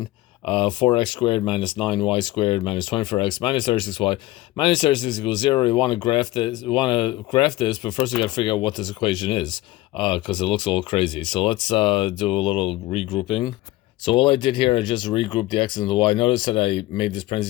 4x squared minus 9y squared minus 24x minus 36y minus 36 equals 0. We want to graph this, but first we got to figure out what this equation is, because it looks a little crazy. So let's do a little regrouping. So all I did here, I just regrouped the x and the y. Notice that I made this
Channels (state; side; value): quieter; right; 17.4 dB